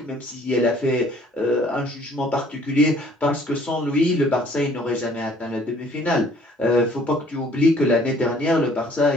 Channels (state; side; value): normal; both; correlation 0.57